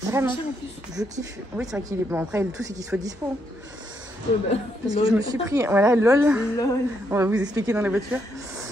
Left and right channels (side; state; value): both; normal; correlation 0.77